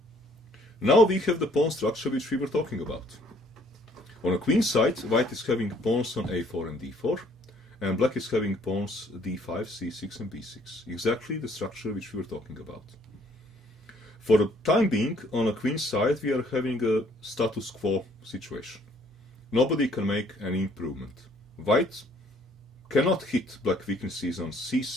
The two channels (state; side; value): normal; both; correlation 0.62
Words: Now we have the pawn structure which we were talking about. On a queen side, white is having pawns on a4 and d4, and black is having pawns d5, c6 and b6. Exactly the structure which we were talking about. For the time being, on a queen side, we are having a status quo situation. Nobody can make any improvement. White cannot hit black weaknesses on